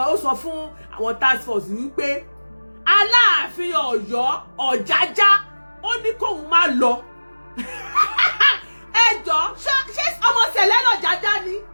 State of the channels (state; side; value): inverted; both; correlation -1.00